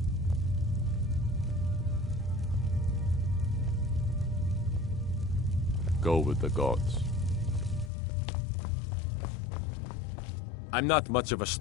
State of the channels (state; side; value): drops out; right; at 7.9 s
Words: Go with the gods. I'm not much of a